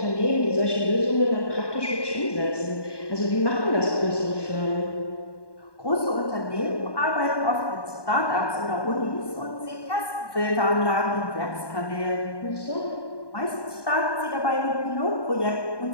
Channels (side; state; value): right; late; 1.2 ms